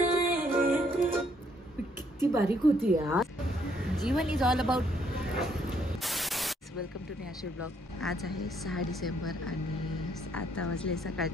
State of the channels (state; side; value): normal; both; correlation 0.69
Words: किती बारीक होती यार. जीवन is all about. Welcome to नेहाशी ब्लॉग. आज आहे 6 डिसेंबर आणि आता वाजले